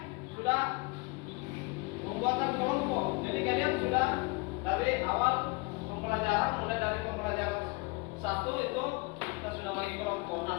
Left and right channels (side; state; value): right; quieter; 27.2 dB